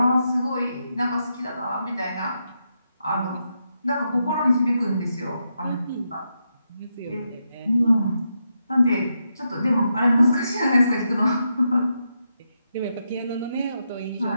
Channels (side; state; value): both; inverted; correlation -0.83